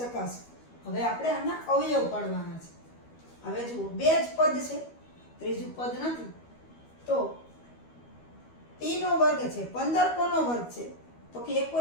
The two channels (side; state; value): right; late; 12 ms